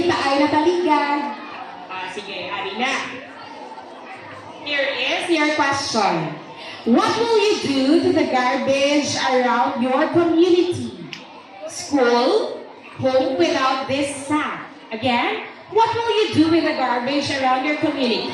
ay nataligan. Sige, hari na. Here is your question. What will you do to the garbage around your community? School, home without this sack. Again, what will you do with the garbage around your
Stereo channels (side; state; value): both; identical; correlation 1.00